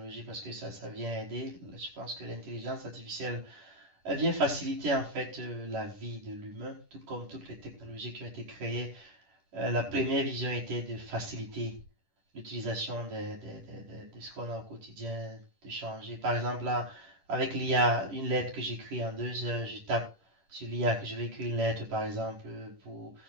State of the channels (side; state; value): left; late; 10 ms